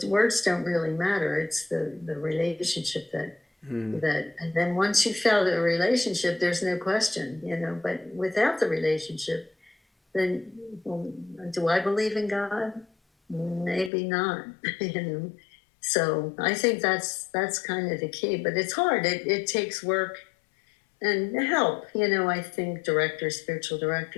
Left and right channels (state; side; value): drops out; right; at 13.9 s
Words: words don't really matter. It's the relationship that, and then once you felt a relationship, there's no question, but without the relationship, then, well, do I believe in God? Maybe not, So I think that's kind of the key, but it's hard. It takes work and help. I think spiritual